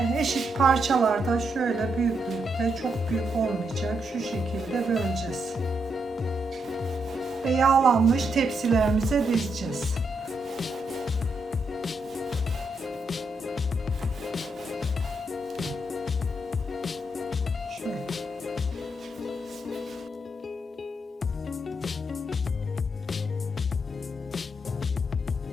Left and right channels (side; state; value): both; normal; correlation 0.80